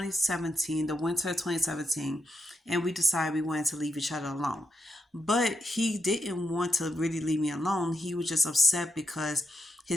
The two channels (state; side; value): normal; both; correlation 0.83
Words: the winter of 2017, and we decided we wanted to leave each other alone. But he didn't want to really leave me alone. He was just upset because